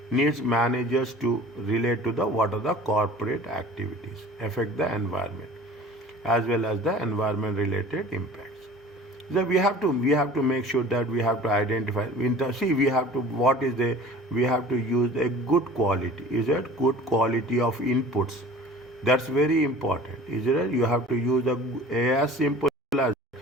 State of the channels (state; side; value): normal; both; correlation 0.44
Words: needs managers to relate to what are the corporate activities affect the environment as well as the environment related impacts. So we have to make sure that we have to identify. We have to use a good quality. Is it good quality of inputs? That's very important. Is it? You have to use as simple as